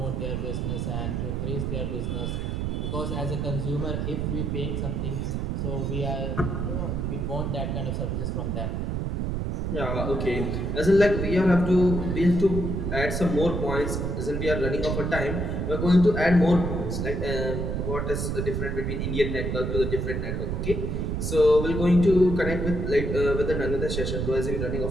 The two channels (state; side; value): noise; right; rumble, 1 dB below the sound